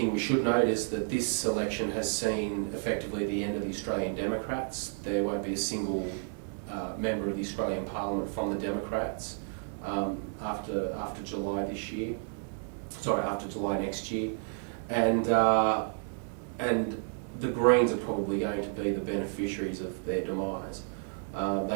we should note is that this election has seen effectively the end of the Australian Democrats. There won't be a single member of the Australian Parliament from the Democrats after July this year. Sorry, after July next year, and the Greens are probably going to be the beneficiaries of their demise.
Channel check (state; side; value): silent; left; 57 dB below the other